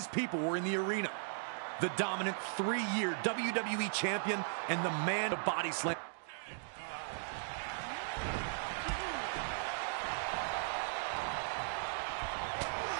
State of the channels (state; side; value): silent; left; digital silence